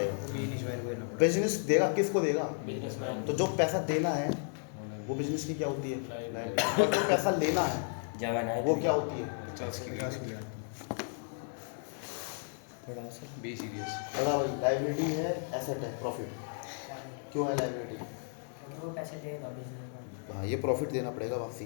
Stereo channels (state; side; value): silent; right; 55 dB below the other